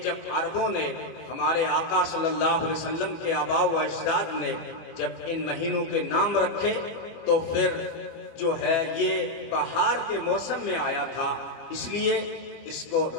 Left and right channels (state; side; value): late; right; 24 ms